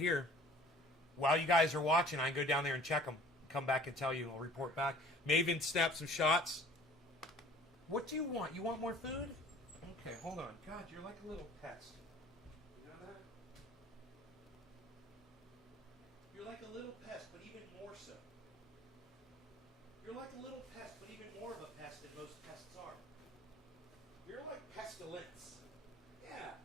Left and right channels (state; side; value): normal; both; correlation 0.50